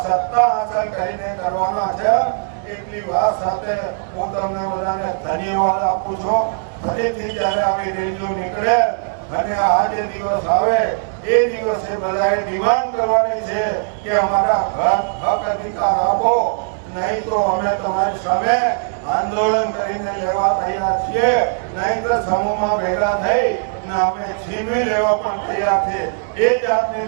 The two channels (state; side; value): silent; left; digital silence